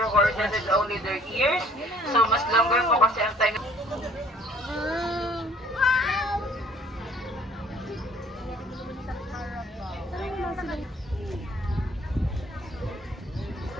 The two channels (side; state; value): both; normal; correlation 0.56